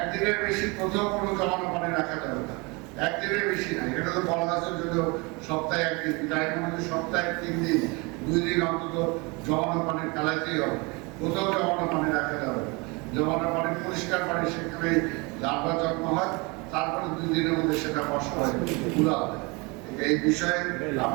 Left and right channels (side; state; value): left; quieter; 27.8 dB